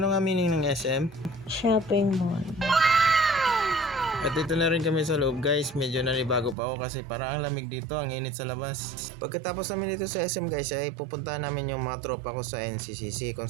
nga meaning ng SM? Shopping mall. At dito na rin kami sa loob guys, medyo nanibago pa ako kasi parang ang lamig dito, ang init sa labas. Pagkatapos namin dito sa SM guys ay pupuntahan namin yung mga tropa ko sa NCCC kung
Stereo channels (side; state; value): left; drops out; at 6.6 s